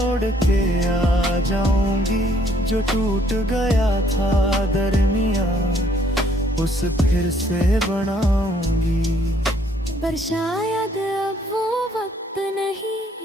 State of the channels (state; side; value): normal; both; correlation 0.65